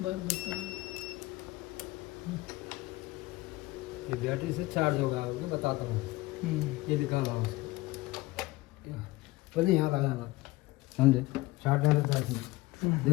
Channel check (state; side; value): quieter; right; 19.7 dB